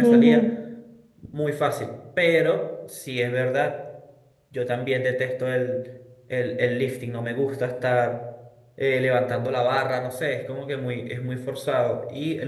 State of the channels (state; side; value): identical; both; correlation 1.00